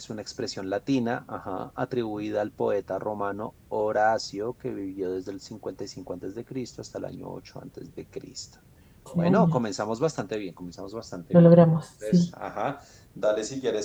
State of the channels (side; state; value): both; identical; correlation 1.00